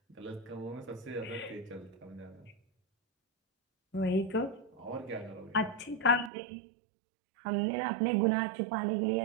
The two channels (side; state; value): left; drops out; at 6.3 s